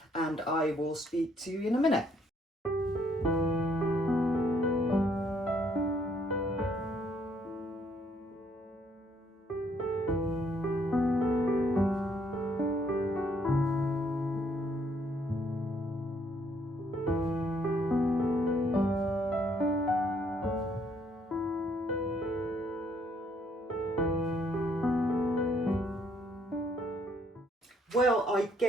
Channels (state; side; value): normal; both; correlation 0.68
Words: and I will speak to you in a minute. Well, I